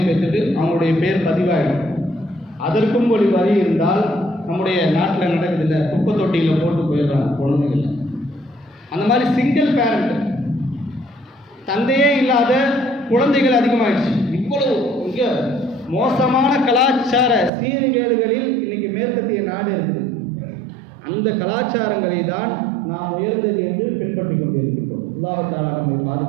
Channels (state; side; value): drops out; left; at 17.5 s